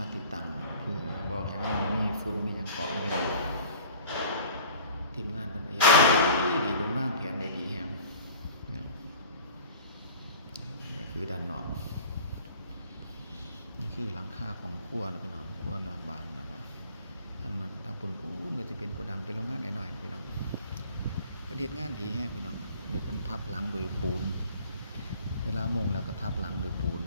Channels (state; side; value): inverted; both; correlation -0.47